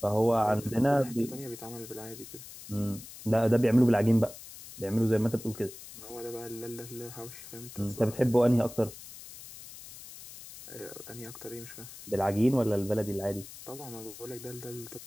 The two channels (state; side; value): noise; left; hiss, 15 dB below the sound